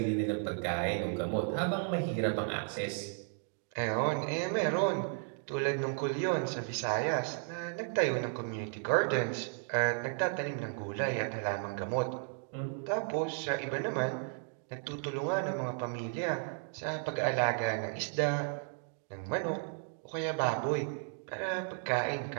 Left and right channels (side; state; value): left; silent; 55 dB below the other